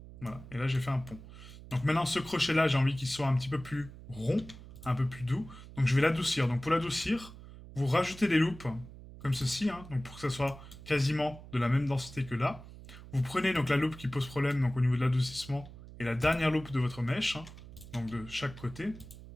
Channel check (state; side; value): noise; right; hum, 16 dB below the sound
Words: Voilà. Et là, j'ai fait un pont. Donc maintenant, ce crochet-là, j'ai envie qu'il soit un petit peu plus rond, un peu plus doux. Donc je vais l'adoucir. Donc pour l'adoucir, vous rajoutez des loupes comme ceci, hein, donc pour que ça soit quasiment de la même densité que là. Vous prenez donc la loupe qui pose problème donc au niveau de l'adoucissement et la dernière loupe de votre mèche, hein, donc de chaque côté.